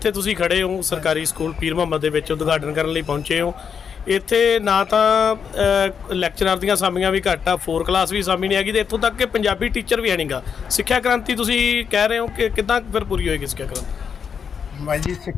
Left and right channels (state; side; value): quieter; right; 6.9 dB